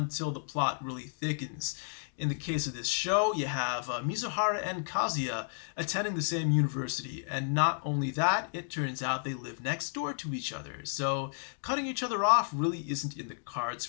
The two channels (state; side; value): silent; right; digital silence